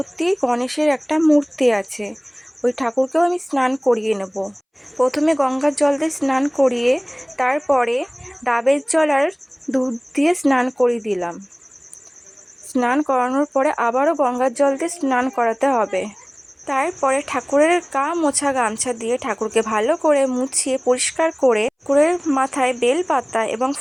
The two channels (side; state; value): both; identical; correlation 1.00